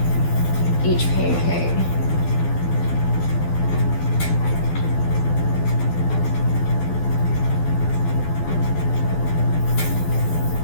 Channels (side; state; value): right; late; 12 ms